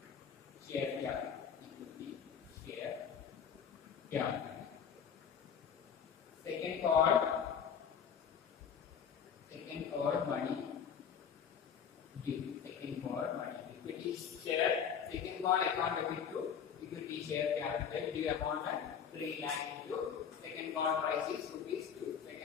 share capital. Second call money due. Second call money equity share. Second call account debit to equity share capital due amount at 3 lakh into second call price is rupees 2.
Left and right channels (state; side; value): quieter; right; 7.5 dB